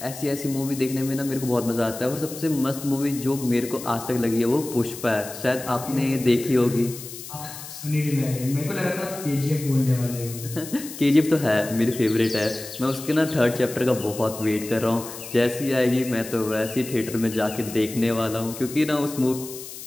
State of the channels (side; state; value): left; noise; hiss, 12 dB below the sound